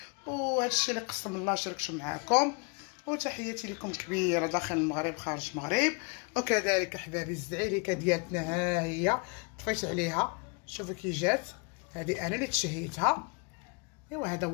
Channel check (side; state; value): right; quieter; 33.4 dB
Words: وهادشي اللي قسم الله شاركته معاكم. وتحياتي لكم كبيره داخل المغرب خارج المغرب. وكذلك احبابي الزعيريكه ديالتنا ها هي طفيت عليها، شوفوا كي جات، هذه انا اللي تشهيتها. ايوا هذا